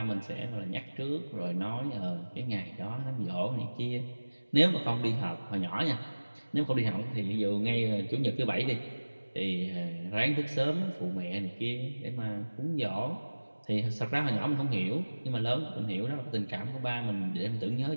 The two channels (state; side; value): inverted; both; correlation -1.00